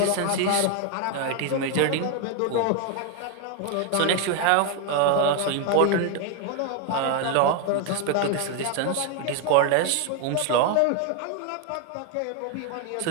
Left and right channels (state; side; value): different; both; correlation 0.01